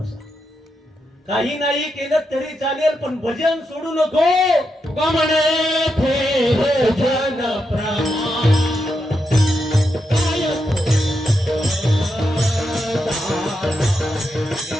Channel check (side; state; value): both; normal; correlation 0.84